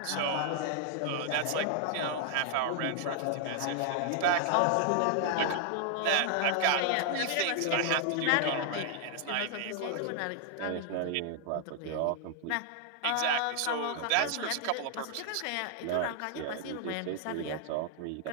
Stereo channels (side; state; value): both; different; correlation 0.00